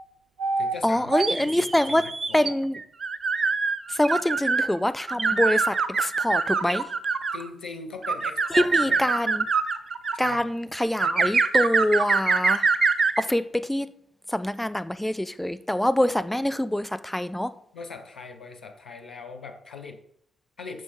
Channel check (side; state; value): both; normal; correlation 0.89